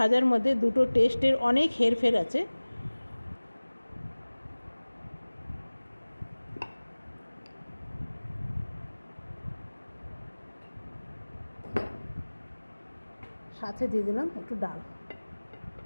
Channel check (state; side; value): inverted; both; correlation -1.00